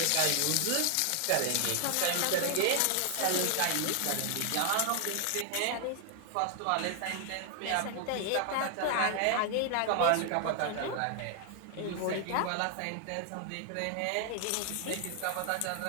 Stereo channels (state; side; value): different; both; correlation 0.00